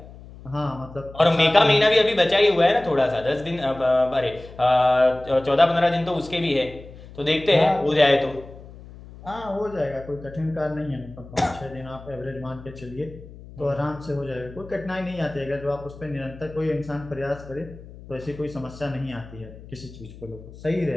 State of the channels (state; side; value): noise; left; hum, 18 dB below the sound